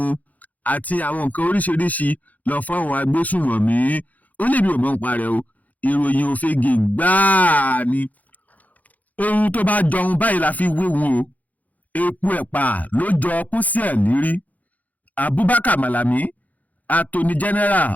àti àwọn nǹkan oríṣiríṣi lọ fún àwọn agbésùnmọ̀mí ó lè bí ò mọ̀ nípa rẹ̀ o ìròyìn òfegè gbáà ni. ohun tó bá jọun báyìí la fi wéwu o epo ẹ̀pà ló jọ pósí ẹ̀ lérí. Abubakar Malami Attorney General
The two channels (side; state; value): right; late; 0.078 ms